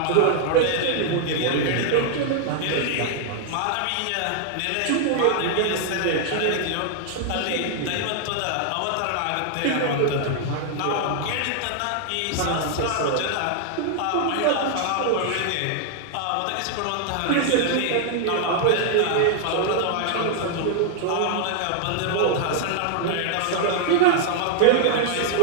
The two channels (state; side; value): different; both; correlation 0.00